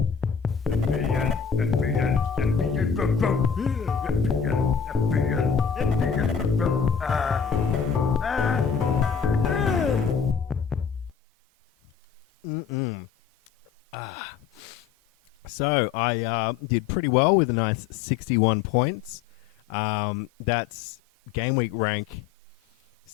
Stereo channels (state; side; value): quieter; right; 7.0 dB